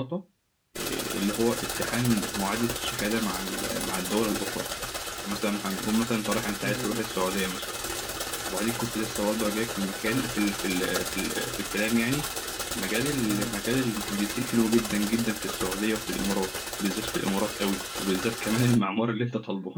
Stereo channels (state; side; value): identical; both; correlation 1.00